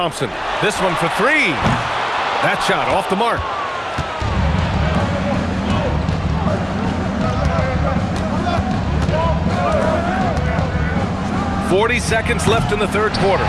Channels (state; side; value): identical; both; correlation 1.00